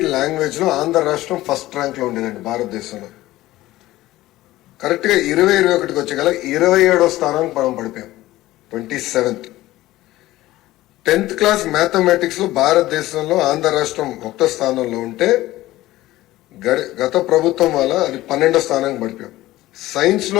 లాంగ్వేజ్ లో ఆంధ్ర రాష్ట్రం ఫస్ట్ ర్యాంక్ లో ఉండేదండి భారతదేశంలో. కరెక్ట్ గా 2021కి వచ్చే గల 27వ స్థానానికి మనం పడిపోయాం, 27th. 10th క్లాస్ మ్యాథమెటిక్స్ లో భారతదేశంలో ఆంధ్ర రాష్ట్రం 1వ స్థానంలో ఉంటే గత ప్రభుత్వం వల్ల అది 12వ స్థానానికి పడిపోయాం. సైన్స్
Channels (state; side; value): quieter; right; 16.6 dB